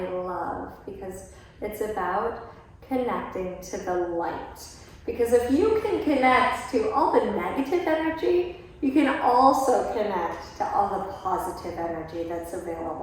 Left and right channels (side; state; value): both; identical; correlation 1.00